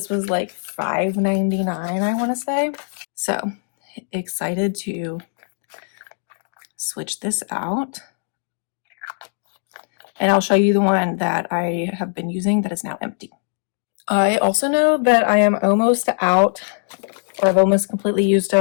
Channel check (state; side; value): silent; right; digital silence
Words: was like $5.99, I want to say. So excited to switch this out, and I'll show you the one that I have been using that is now empty. I also know that I am almost out, or I've almost completely used